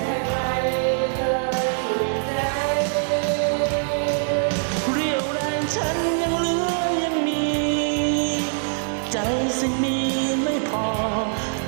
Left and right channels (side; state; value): left; silent; digital silence